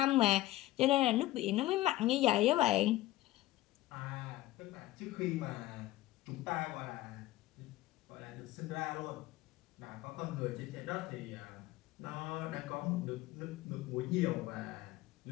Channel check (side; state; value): right; quieter; 16.6 dB